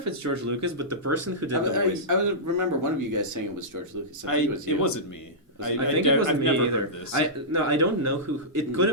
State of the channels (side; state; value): both; normal; correlation -0.15